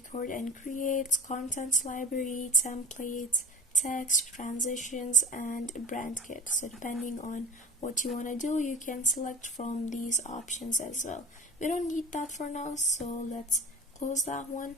and create, contents library, templates, text, transitions, and brand kit. So depending on what you want to do, you can select from these options as well. We don't need that for now, so let's close that one.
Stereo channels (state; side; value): normal; both; correlation 0.35